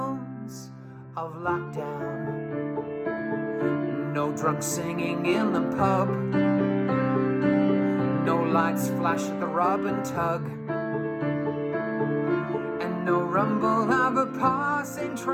of lockdown. No drunk singing in the pub, no lights flash at the rub and tug, and no rumble of a passing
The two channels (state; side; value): identical; both; correlation 1.00